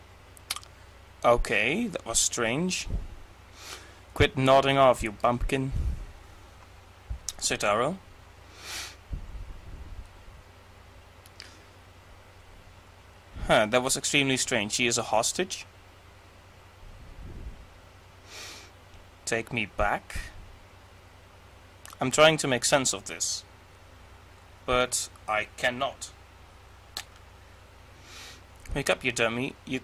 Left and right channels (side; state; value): both; identical; correlation 1.00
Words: Okay, that was strange. Quit nodding off, you bumpkin. Citaro. Huh, that was extremely strange. She is a hostage. Take me back. I'm trying to make sense of this, but I cannot. Wake up, you dummy.